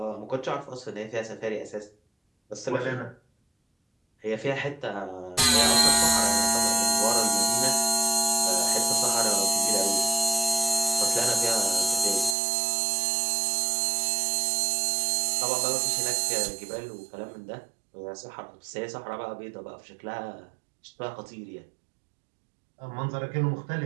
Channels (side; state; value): left; drops out; at 12.4 s